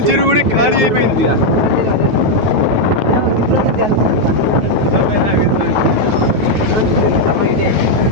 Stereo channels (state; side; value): late; left; 9.2 ms